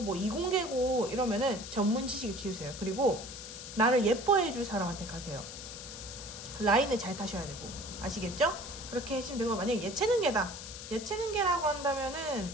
뭐 이공계고 이러면은 전문 지식을 키우세요. 그리고 나를 예뻐해 줄 사람한테 가세요. 라인을 잘 타셔야 되고, 아시겠죠? 그렇게 하시면 되고, 만약에 예체능계다, 예체능계라고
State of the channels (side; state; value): left; noise; hiss, 11 dB below the sound